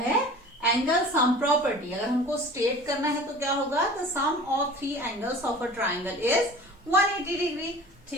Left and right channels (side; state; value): both; normal; correlation 0.41